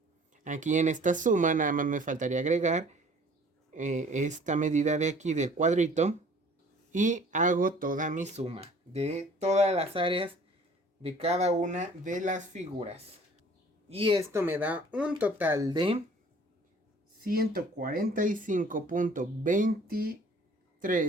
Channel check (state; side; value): normal; both; correlation 0.52